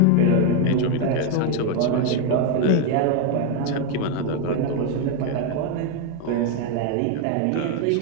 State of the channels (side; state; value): both; different; correlation 0.01